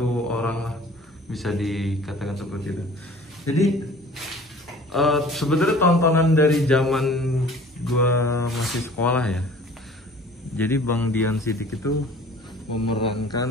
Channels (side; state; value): both; normal; correlation 0.48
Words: orang lah, bisa dikatakan seperti itu. Jadi sebenarnya tontonan dari zaman gua masih sekolah ya. Jadi Bang Dian Sidik itu